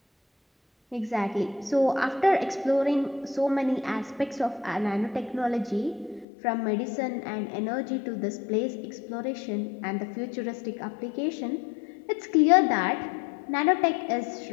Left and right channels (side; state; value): right; drops out; at 6.2 s